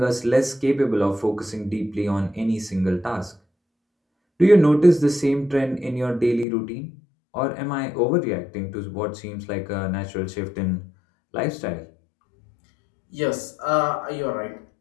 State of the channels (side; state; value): right; drops out; at 6.5 s